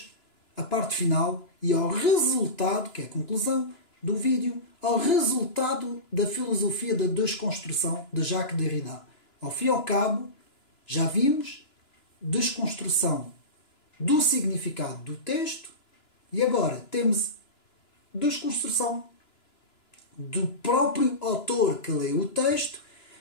à parte final e ao resultado, que é a conclusão do vídeo, ao resultado da filosofia da desconstrução de Jacques Derrida. Ao fim e ao cabo, já vimos desconstrução do significado do texto e agora temos desconstrução do próprio autor que lê o texto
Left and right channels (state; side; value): late; right; 2.9 ms